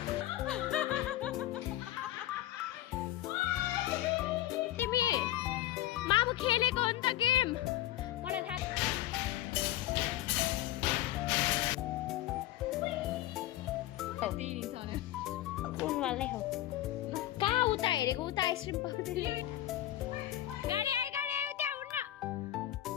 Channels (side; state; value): right; quieter; 14.3 dB